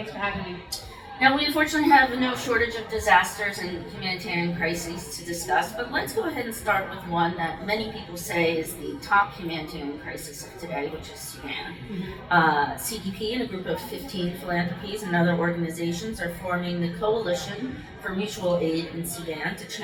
for having me. Now, we unfortunately have no shortage of disasters and humanitarian crises to discuss, but let's go ahead and start with one that many people say is the top humanitarian crisis of today, which is Sudan. CDP and a group of 15 philanthropies and other organizations are forming the Coalition for Mutual Aid in Sudan to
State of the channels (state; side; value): identical; both; correlation 1.00